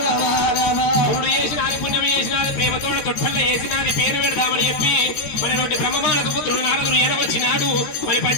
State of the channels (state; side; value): late; right; 13 ms